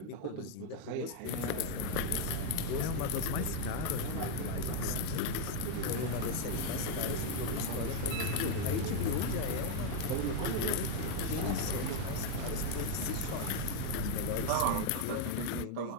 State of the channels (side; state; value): both; different; correlation 0.01